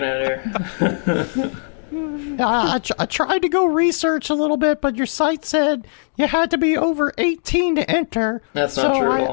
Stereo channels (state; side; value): silent; right; digital silence